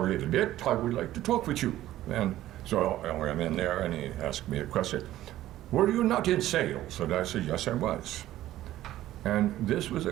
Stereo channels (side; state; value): left; quieter; 14.2 dB